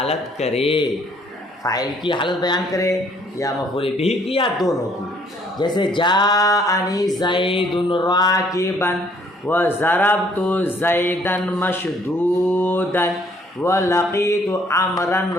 کرے. فاعل کی حالت بیان کرے یا مفعول بھی کی یا دونوں کی. جیسے جاءنی زید راکبا وضربت زیدا مشدودا ولقیت عمرا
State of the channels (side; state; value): both; normal; correlation 0.63